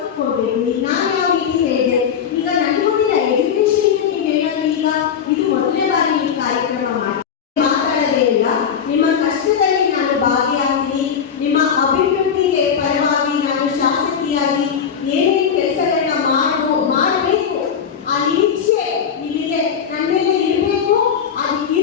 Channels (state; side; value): quieter; right; 7.5 dB